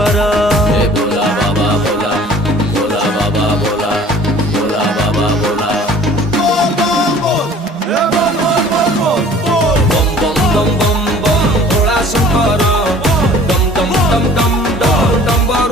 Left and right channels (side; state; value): both; normal; correlation 0.49